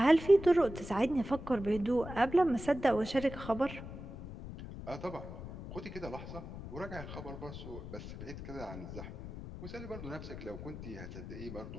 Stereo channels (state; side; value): noise; left; rumble, 10 dB below the sound